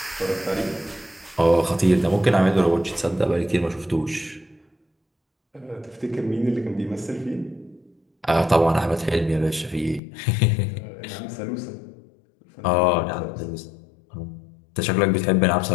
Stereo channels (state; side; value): drops out; right; at 10.0 s